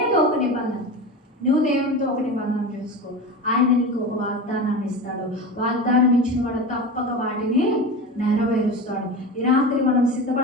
ఏదో ఒక నిబంధన నువ్వు దేవుడితో ఒక నిబంధన చేసుకో. ఆయన నీకు ఒక వాగ్దానాన్ని ఇస్తాడు. వాగ్దానం ఇచ్చిన వాడు తప్పక వాటిని నెరవేరుస్తాడు. ఈ రాత్రి మనం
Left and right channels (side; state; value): both; normal; correlation 0.28